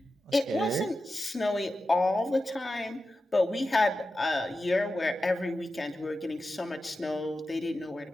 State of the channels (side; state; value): both; normal; correlation 0.92